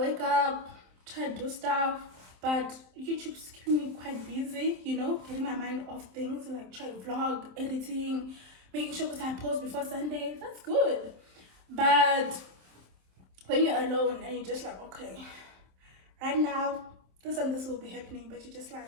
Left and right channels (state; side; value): late; left; 27 ms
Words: up, try to do stuff, but YouTube's keeping me quite busy, you know, getting my mind off things, like try vlog, editing, making sure that I post before Sunday. That's good. But when you're alone and you're just like, okay, right now, this and this will be happening, but you're just like,